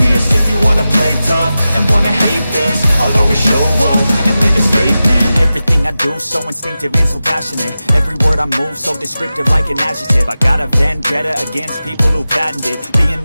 If you wanna play tough and wanna hate this, I'll always show up and make a statement. Everything I do so instinctive and so passionate. Every word I move so descriptive like an adjective. I got a vendetta against people who patented being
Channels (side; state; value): both; inverted; correlation -0.94